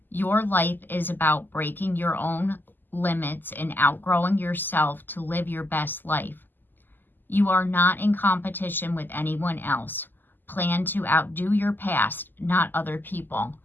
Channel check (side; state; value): right; late; 0.090 ms